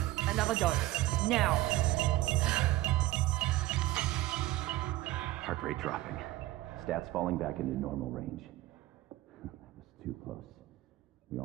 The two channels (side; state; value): left; quieter; 16.2 dB